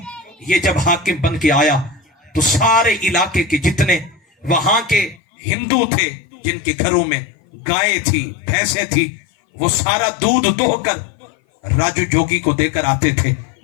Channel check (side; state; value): right; drops out; at 5.2 s